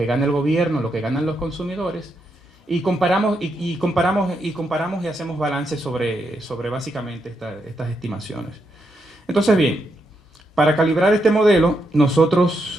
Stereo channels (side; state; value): both; normal; correlation 0.81